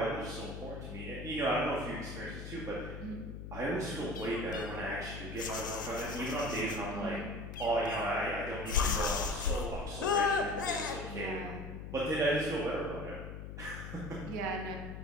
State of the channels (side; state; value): left; noise; hum, 8 dB below the sound